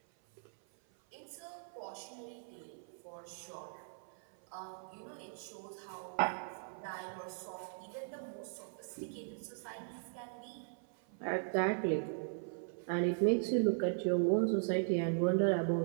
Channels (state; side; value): silent; left; 52 dB below the other